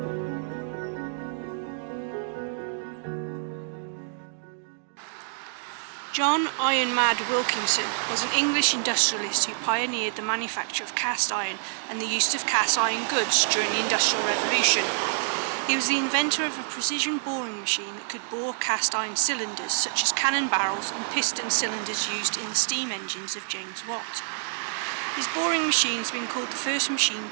John Iron Mad Wilkinson was an English industrialist who pioneered the manufacture of cast iron and the use of cast iron goods during the Industrial Revolution. He was the inventor of a precision boring machine that could bore cast iron cylinders such as cannon barrels and piston cylinders used in the steam engines of James Watt. His boring machine has been called the first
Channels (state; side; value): silent; left; digital silence